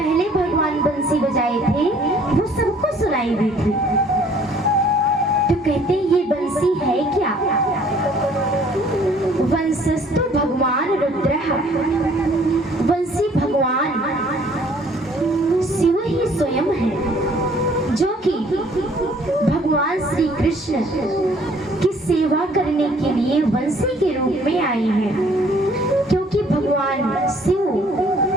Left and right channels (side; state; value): both; normal; correlation 0.58